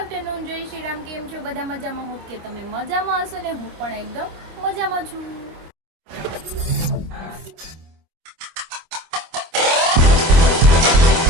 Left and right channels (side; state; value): left; late; 25 ms